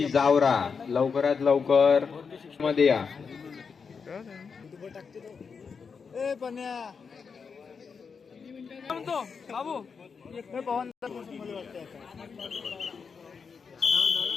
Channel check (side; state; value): right; quieter; 5.7 dB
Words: जावरा लवकरात लवकर मध्ये या.